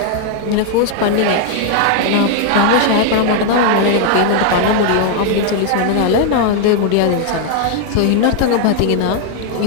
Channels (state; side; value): different; both; correlation 0.00